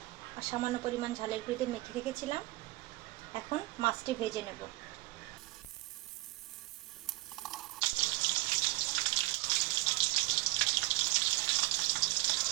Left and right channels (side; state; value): left; quieter; 21.8 dB